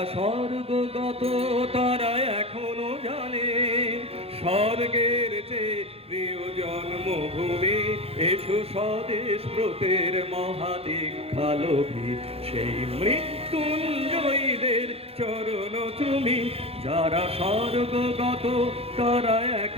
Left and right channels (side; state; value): left; late; 0.29 ms